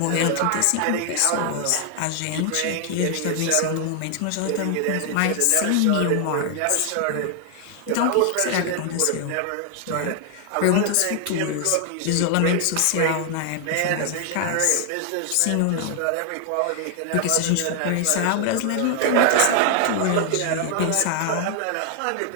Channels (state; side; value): different; both; correlation 0.00